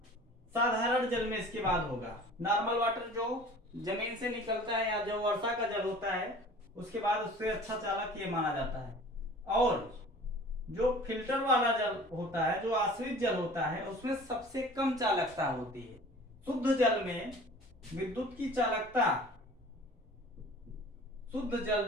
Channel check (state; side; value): normal; both; correlation 0.45